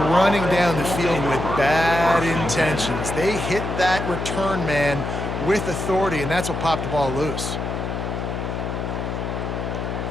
running down the field with bad intentions. They hit that return man with authority, and that's what popped the ball loose.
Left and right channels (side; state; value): left; noise; hum, 4 dB below the sound